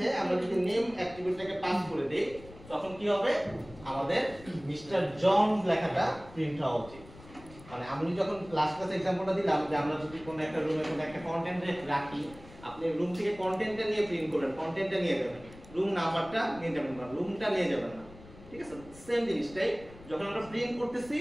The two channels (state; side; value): noise; left; rumble, 20 dB below the sound